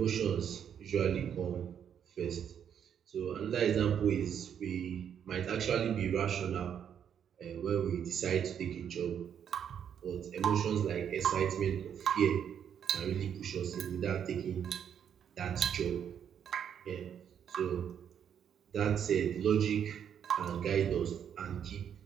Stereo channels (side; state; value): left; quieter; 8.6 dB